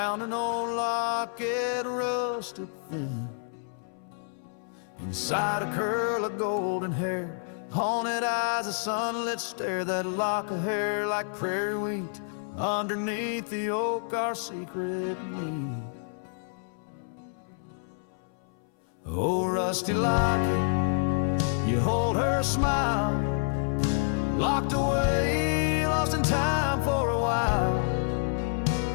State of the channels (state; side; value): silent; right; 59 dB below the other